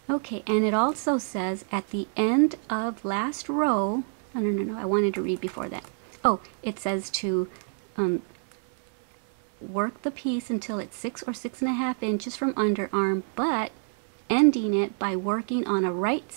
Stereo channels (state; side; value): silent; left; 60 dB below the other